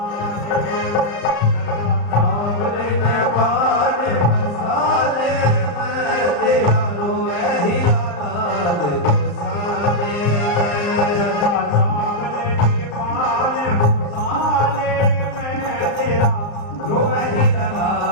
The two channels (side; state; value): right; late; 34 ms